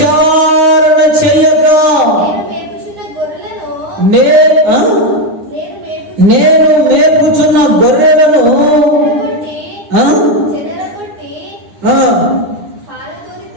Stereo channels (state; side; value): late; left; 9.9 ms